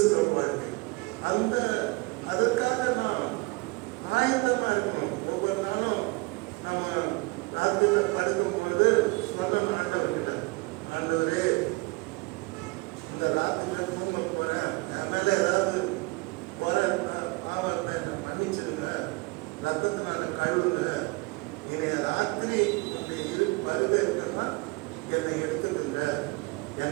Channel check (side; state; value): left; quieter; 26.0 dB